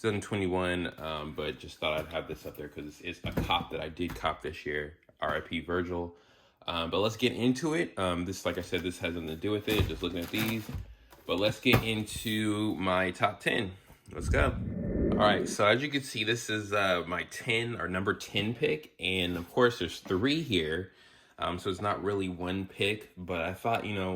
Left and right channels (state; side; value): identical; both; correlation 1.00